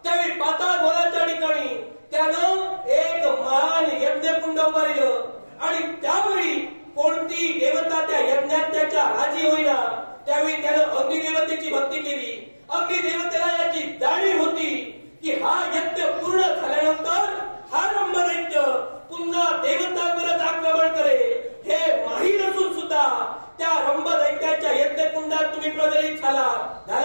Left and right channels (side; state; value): both; inverted; correlation -1.00